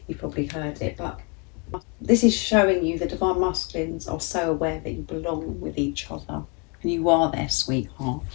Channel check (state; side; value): quieter; right; 33.5 dB